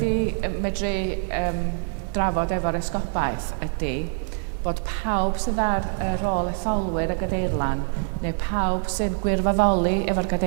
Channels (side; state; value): left; silent; 62 dB below the other